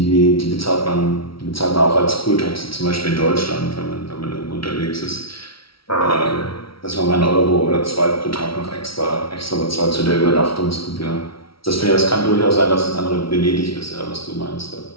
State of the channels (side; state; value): right; late; 0.75 ms